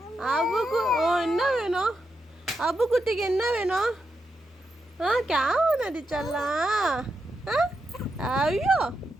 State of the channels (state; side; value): normal; both; correlation 0.85